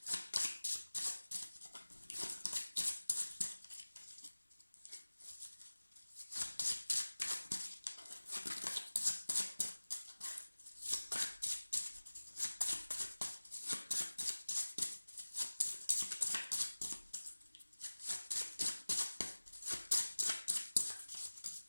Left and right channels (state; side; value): inverted; both; correlation -1.00